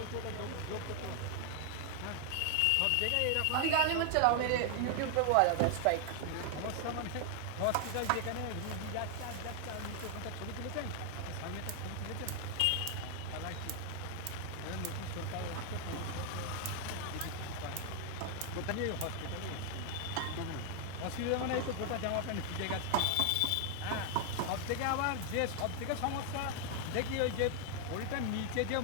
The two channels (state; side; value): different; both; correlation 0.00